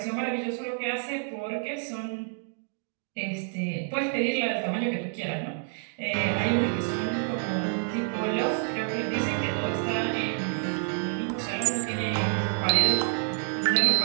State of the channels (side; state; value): left; silent; 56 dB below the other